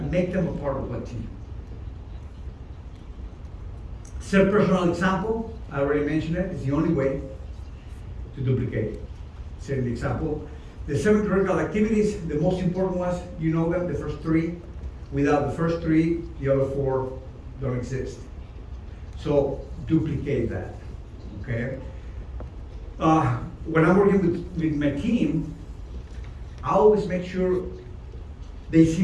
make them a part of a team. Set personal example, I already mentioned it, it's the only way to duplicate. Set the example. The 7 critical activities, the most important ones, you know them, the first 3. Without the first 3, the other 4 don't exist. So duplicate that, okay? When I'm working with my team, I always make sure they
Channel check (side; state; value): both; identical; correlation 1.00